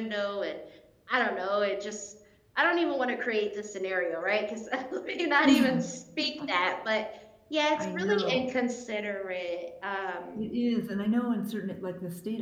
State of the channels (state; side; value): identical; both; correlation 1.00